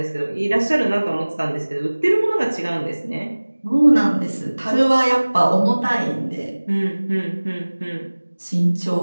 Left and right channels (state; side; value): inverted; both; correlation -1.00